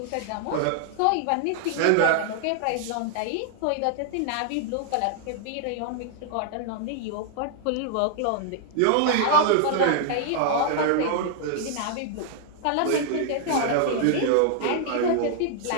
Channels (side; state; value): both; different; correlation 0.00